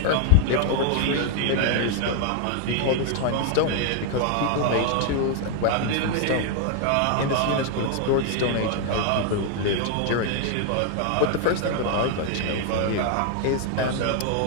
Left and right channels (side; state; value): both; different; correlation 0.00